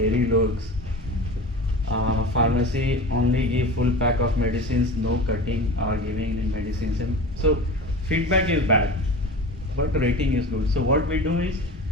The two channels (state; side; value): normal; both; correlation 0.33